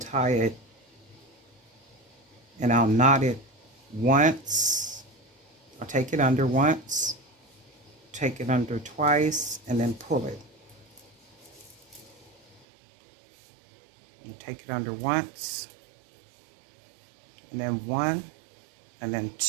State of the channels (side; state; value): left; drops out; at 12.7 s